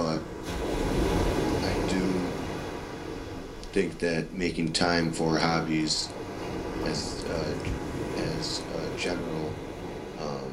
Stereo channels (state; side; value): identical; both; correlation 1.00